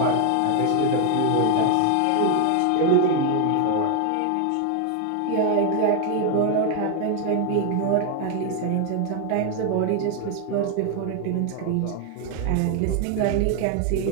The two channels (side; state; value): both; different; correlation 0.00